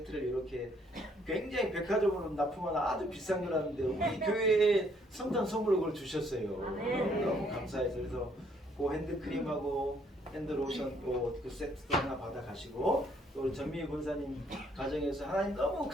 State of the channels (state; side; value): normal; both; correlation 0.67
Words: 이렇게 굉장히 백화점으로 납품하는 아주 비싼 거라는데 우리 교회에 성탄 선물로 그걸 주셨어요. 너무 감사해서 그래서 그 핸드크림하고 핸드로션 그 세트도 하나 받아 가시고 또 우리 전미희 권사님 가정에서 하나님 너무